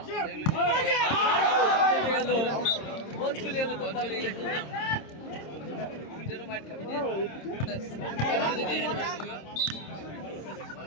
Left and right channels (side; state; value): right; late; 26 ms